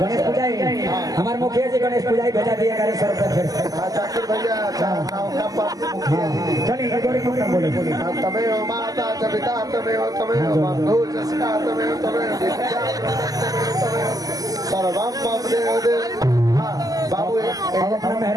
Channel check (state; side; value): late; left; 0.17 ms